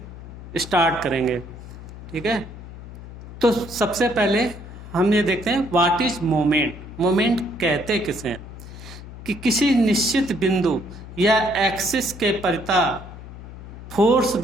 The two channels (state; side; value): noise; left; hum, 14 dB below the sound